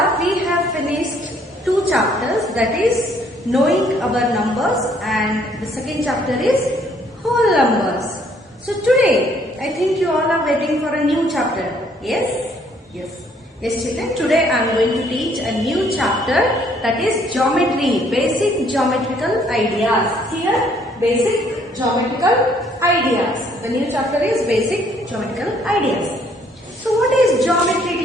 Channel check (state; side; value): normal; both; correlation 0.64